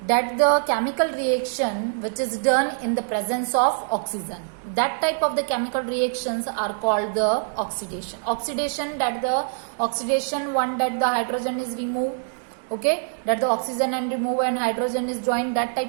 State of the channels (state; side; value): silent; left; digital silence